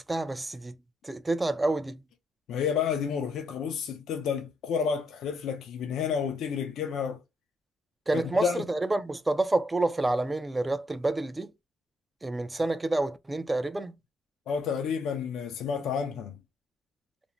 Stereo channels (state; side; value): normal; both; correlation 0.75